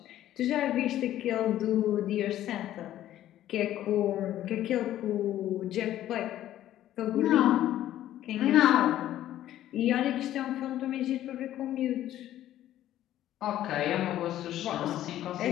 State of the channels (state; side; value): quieter; right; 12.8 dB